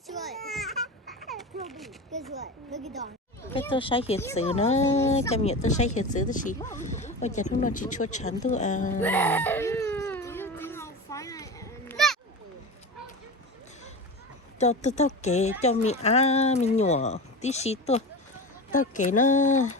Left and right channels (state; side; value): normal; both; correlation 0.27